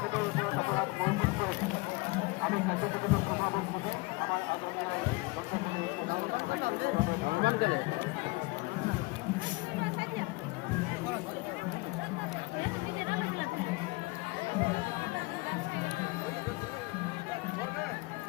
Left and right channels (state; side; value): quieter; right; 24.9 dB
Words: উপর অপরাধ মনোযোগ করেছি। আমি কার্যকরিত প্রভাবক বুঝি আমার আন্দোলনের